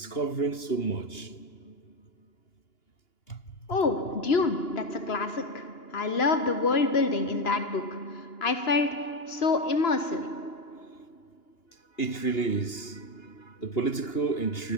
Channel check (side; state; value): right; late; 2.8 ms